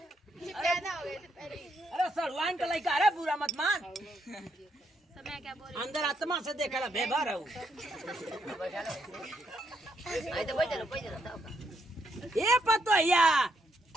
ये पैदा हो गए थे पहले। अरे सलवान का लइका अरे बुरा मत मान। तो मैं क्या बोल रही अंदर आत्मा से देखला बेबार हूं। आई तो बैठ जा। ए पतोहिया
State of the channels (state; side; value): normal; both; correlation 0.76